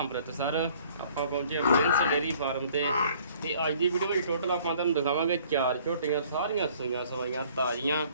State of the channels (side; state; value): both; inverted; correlation -0.57